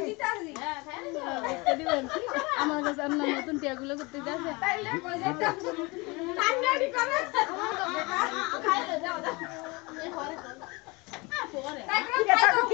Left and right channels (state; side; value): quieter; right; 25.9 dB